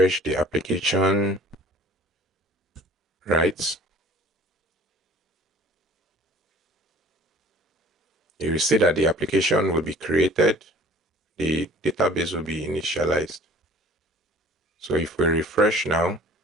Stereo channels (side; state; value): both; normal; correlation 0.48